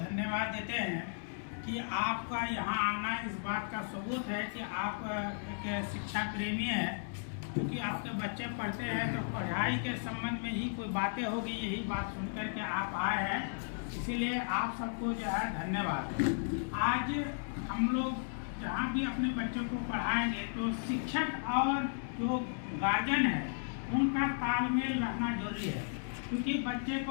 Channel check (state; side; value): silent; right; digital silence